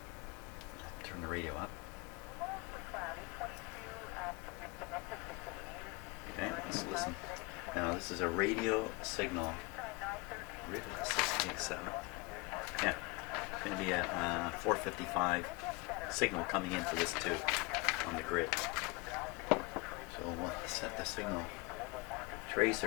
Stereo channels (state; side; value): quieter; right; 26.1 dB